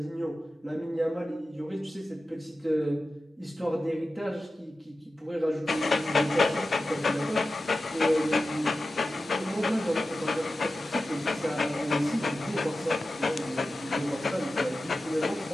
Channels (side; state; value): both; normal; correlation 0.94